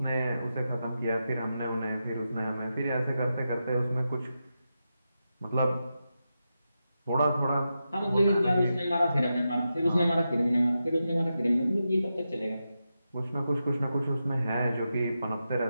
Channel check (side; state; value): both; inverted; correlation -0.89